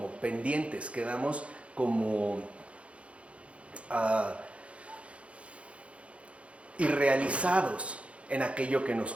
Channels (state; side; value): late; left; 0.062 ms